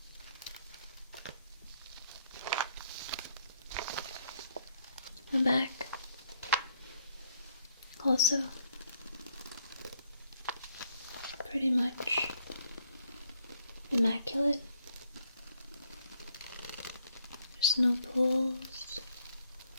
The back also pretty much immaculate. There's no pulls,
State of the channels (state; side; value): inverted; both; correlation -0.70